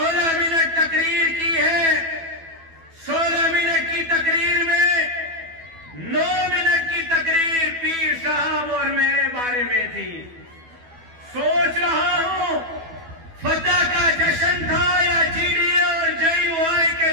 منٹ تقریر کی ہے، 16 منٹ کی تقریر میں 9 منٹ کی تقریر پیر صاحب اور میرے بارے میں تھی۔ سوچ رہا ہوں فتح کا جشن تھا یا جی ڈی اے اور JUI کے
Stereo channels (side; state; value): left; late; 12 ms